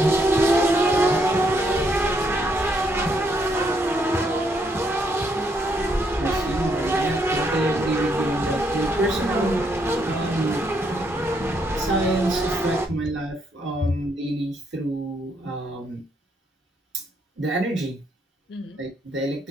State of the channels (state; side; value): normal; both; correlation 0.74